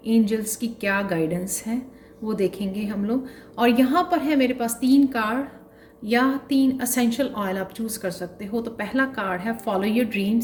एंजल्स की क्या गाइडेंस है वो देखेंगे हम लोग। और यहाँ पर है मेरे पास 3 कार्ड या 3 असेंशियल ऑयल आप चूज़ कर सकते हो। तो पहला कार्ड है फॉलो योर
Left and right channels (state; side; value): identical; both; correlation 1.00